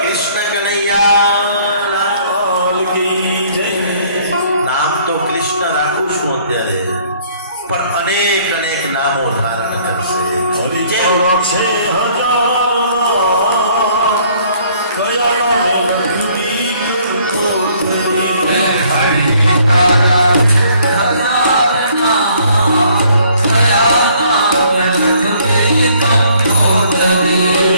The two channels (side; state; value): both; inverted; correlation -0.61